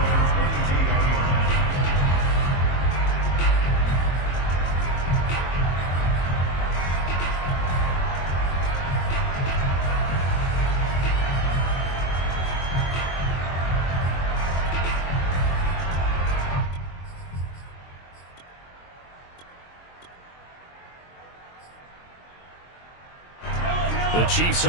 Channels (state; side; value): late; right; 22 ms